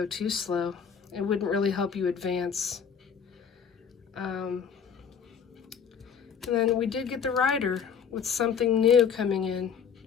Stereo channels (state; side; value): quieter; right; 7.0 dB